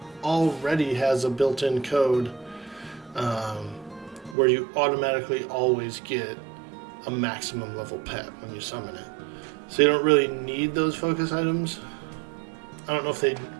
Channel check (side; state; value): left; drops out; at 4.4 s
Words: already has a built-in code where you automatically always get a maximum level pet when you summon it. So you don't really need those focus items. I don't know if they